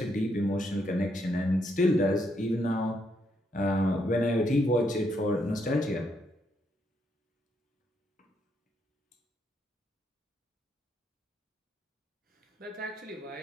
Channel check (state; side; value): normal; both; correlation 0.76